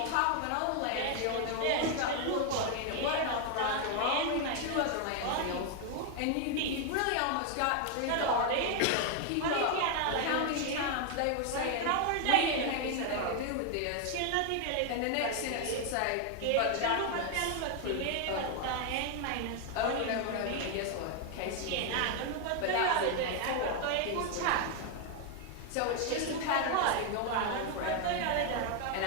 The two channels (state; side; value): different; both; correlation 0.01